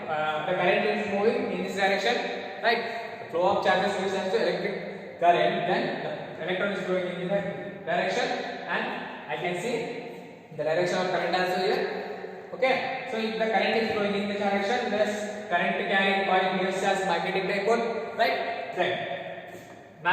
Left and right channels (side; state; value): both; identical; correlation 1.00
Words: the current is moving in this direction, right? The flow of charges gives us to electric current, then the electron is flowing in this direction, and I can see the direction of current also here. Okay, so if the current is flowing in this direction, this current carrying coil behaves as magnetic dipole, right? Then